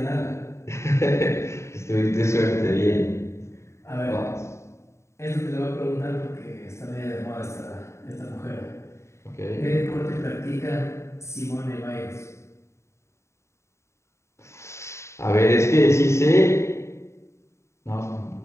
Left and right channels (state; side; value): late; right; 0.14 ms